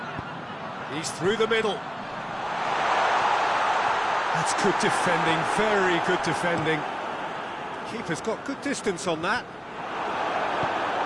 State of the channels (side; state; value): both; identical; correlation 1.00